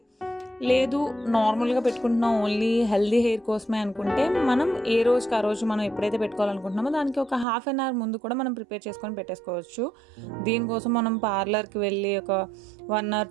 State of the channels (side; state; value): left; drops out; at 7.5 s